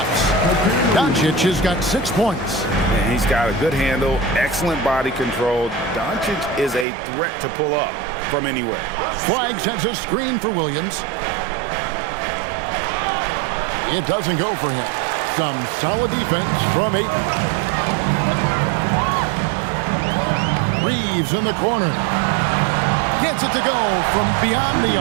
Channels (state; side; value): drops out; left; at 6.9 s